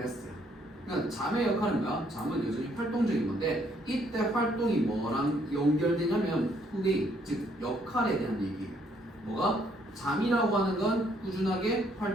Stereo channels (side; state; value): both; normal; correlation 0.68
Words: 그러니까 잠의 역할은 뭐야? 잠은 여전히 활동적인 건데 이때 활동이 뭐랑 연결되냐면 플레이, 즉 역할에 대한 얘기예요. 뭐가? 잠이라고 하는 건 꾸준하게